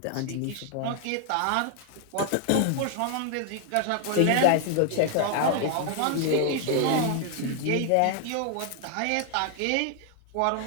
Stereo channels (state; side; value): different; both; correlation 0.00